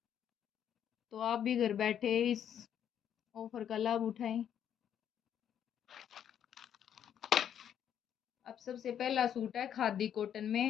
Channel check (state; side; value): quieter; right; 9.3 dB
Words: तो आप भी घर बैठे इस ऑफर का लाभ उठाएं। अब सबसे पहला सूट है खादी कॉटन